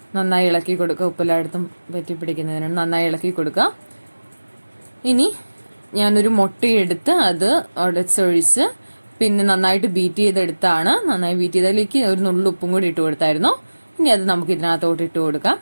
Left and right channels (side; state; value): both; inverted; correlation -1.00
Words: നന്നായി ഇളക്കി കൊടുക്കുക. ഉപ്പെല്ലായിടത്തും പറ്റി പിടിക്കുന്നതിനാണ് നന്നായി ഇളക്കി കൊടുക്കുക. ഇനി ഞാനൊരു മുട്ടയെടുത്ത് അത് ഉടച്ചൊഴിച്ച് പിന്നെ നന്നായിട്ട് ബീറ്റ് ചെയ്തെടുത്താണ്. നന്നായി ബീറ്റ് ചെയ്തതിലേക്ക് ഒരു നുള്ളു ഉപ്പും കൂടി ഇട്ട് കൊടുത്തായിരുന്നു. ഇനി അത് നമുക്ക് ഇതിനകത്തോട്ട് ഇട്ട് കൊടുക്കാം.